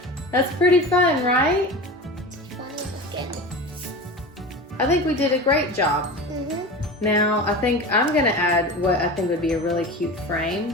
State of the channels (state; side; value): normal; both; correlation 0.30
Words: That's pretty fun, right? I think we did a great job. Mm-hmm. Now, I think I'm gonna add what I think would be a really cute